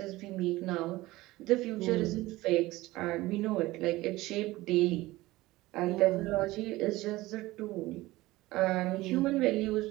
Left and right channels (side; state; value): left; quieter; 18.7 dB